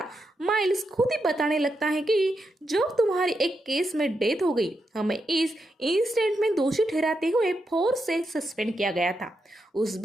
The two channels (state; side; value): normal; both; correlation 0.84